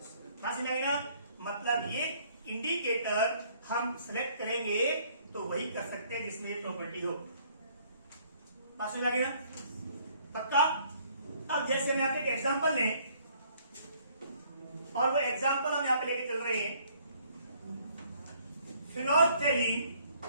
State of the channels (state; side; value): inverted; both; correlation -0.62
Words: समझ में आई ना? मतलब ये इंडिकेटर हम सिलेक्ट करेंगे तो वही कर सकते हैं जिसमें ये प्रॉपर्टी हो। बात समझ लगी ना? पक्का? अब जैसे हम यहाँ पे एक एग्जाम्पल लें, और वो एग्जाम्पल हम यहाँ पे लेके चल रहे हैं, फिनोल्फथालीन